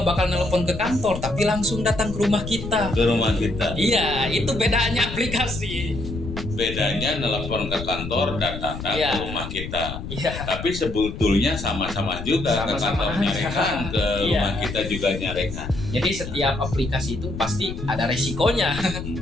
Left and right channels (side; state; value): left; noise; rumble, 8 dB below the sound